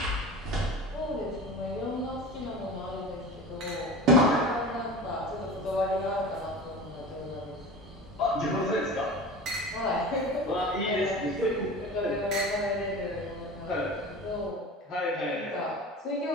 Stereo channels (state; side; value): normal; both; correlation 0.34